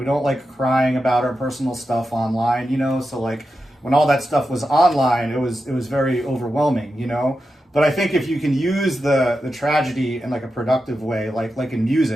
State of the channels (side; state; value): both; normal; correlation 0.90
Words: don't like crying about our personal stuff online, you know. So like when all that stuff was online, it was very overwhelming, you know. But I think if you can use the tragedy in like a productive way, like in